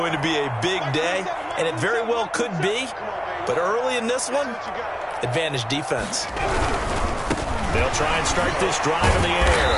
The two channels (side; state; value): both; identical; correlation 1.00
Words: to be a big day, and it very well could be. But early in this one, advantage defense. They'll try and start this drive in the